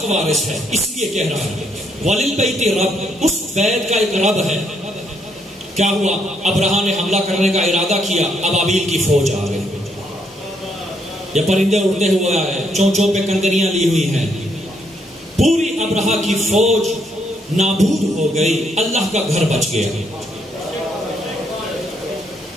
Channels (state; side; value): normal; both; correlation 0.73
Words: وارث ہے، اس لیے کہہ رہا ہے وَلِلْبَيْتِ رب، اس بیت کا ایک رب ہے. کیا ہوا؟ ابرہا نے حملہ کرنے کا ارادہ کیا، ابابیل کی فوج آ گئی. یہ پرندے اڑتے ہوئے آئے، چونچوں پہ کنکریاں لی ہوئی ہیں. پوری ابرہا کی فوج نابود ہو گئی، اللہ کا گھر بچ گیا.